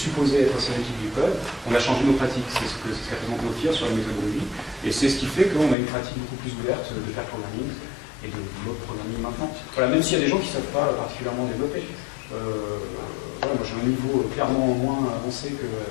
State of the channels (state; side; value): drops out; right; at 5.8 s